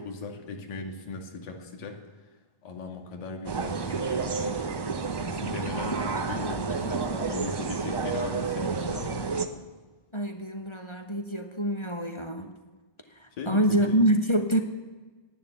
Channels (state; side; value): late; right; 1.1 ms